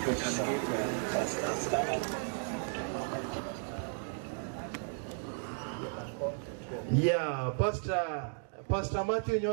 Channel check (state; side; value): silent; left; 55 dB below the other